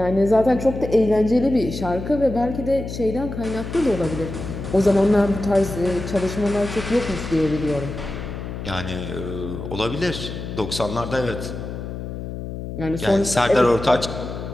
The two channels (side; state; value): left; noise; hum, 8 dB below the sound